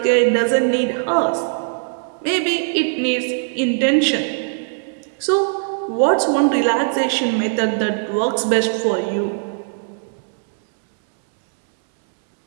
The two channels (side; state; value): left; silent; digital silence